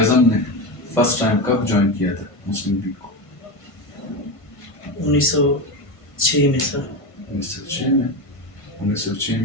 نے فرسٹ ٹائم کب جوائن کیا تھا مسلم لیگ کو؟ 1906 میں سر. 1906 میں. 1906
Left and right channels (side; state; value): right; late; 1.5 ms